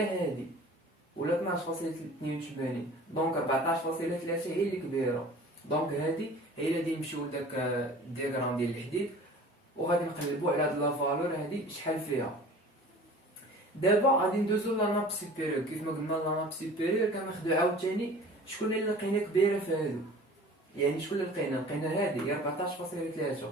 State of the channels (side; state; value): both; normal; correlation 0.44